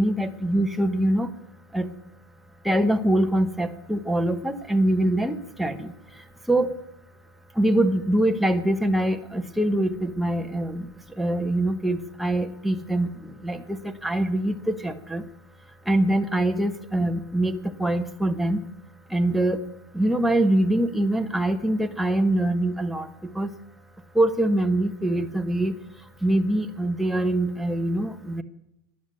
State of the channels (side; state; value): both; normal; correlation 0.88